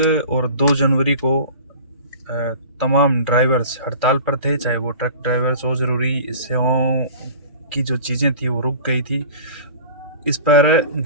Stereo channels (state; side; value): inverted; both; correlation -0.39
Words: और 2 जनवरी को तमाम ड्राइवर्स हड़ताल पर थे, चाहे वो ट्रक ड्राइवर्स हो। ज़रूरी सेवाओं की जो चीज़ें थी वो रुक गई थी। इस पर